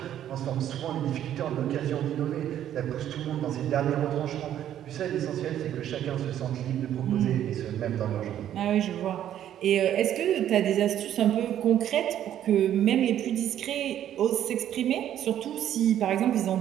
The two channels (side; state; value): left; quieter; 11.0 dB